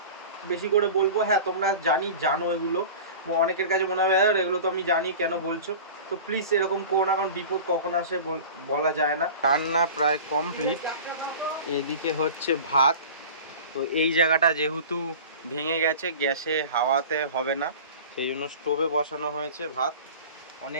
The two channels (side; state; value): both; inverted; correlation -0.37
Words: বেশি করে বলবো। হ্যাঁ তোমরা জানো এগুলো, অনেকের কাছে মনে হবে এগুলো তো আমি জানি কেন বলছো, তো প্লিজ এরকম করো না, কারণ বিপদ কখন আসে বলা যায় না। রান্না প্রায় কমপ্লিট, এদিকে হচ্ছে ভাত। তো এই জায়গাটা যেহেতু ভেঙে গেছে, গ্যাসে হাওয়াতে হবে না, সেই জন্য স্টোভে বসানো হয়েছে ভাত।